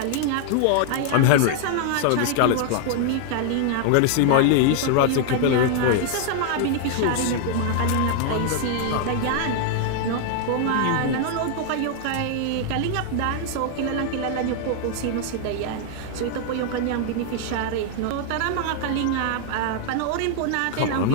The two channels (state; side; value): different; both; correlation 0.00